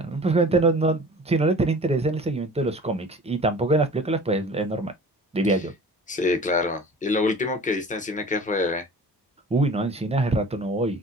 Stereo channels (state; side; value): normal; both; correlation 0.43